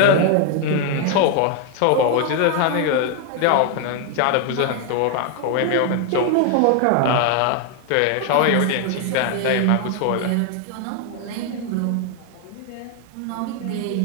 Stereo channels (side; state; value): both; different; correlation 0.00